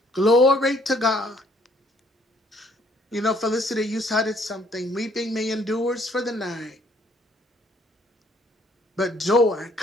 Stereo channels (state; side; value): normal; both; correlation 0.63